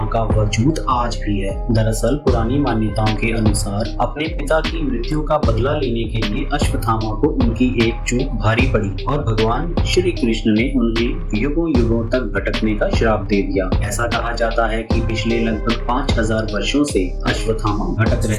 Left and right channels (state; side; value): identical; both; correlation 1.00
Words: का वजूद आज भी है। दरअसल पुरानी मान्यताओं के अनुसार अपने पिता की मृत्यु का बदला लेने के लिए अश्वत्थामा को उनकी एक चूक भारी पड़ी और भगवान श्री कृष्ण ने उन्हें युगों युगों तक भटकने का श्राप दे दिया। ऐसा कहा जाता है कि पिछले लगभग 5000 वर्षों से अश्वत्थामा भटक